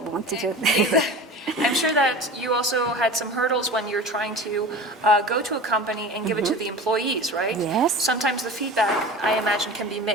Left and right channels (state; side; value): normal; both; correlation 0.35